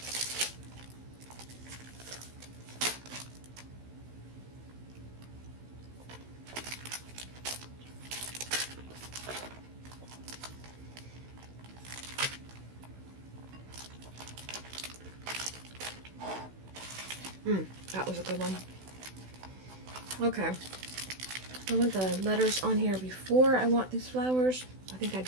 That was a good one. Okay. I want the letters on here before I want these flowers. I think I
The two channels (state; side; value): late; left; 16 ms